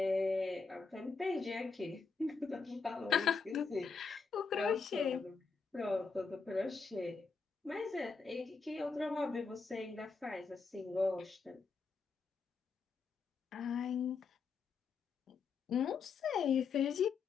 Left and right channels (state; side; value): quieter; right; 4.9 dB